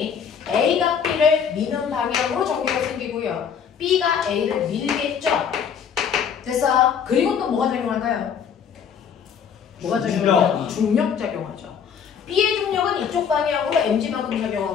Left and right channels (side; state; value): right; quieter; 7.4 dB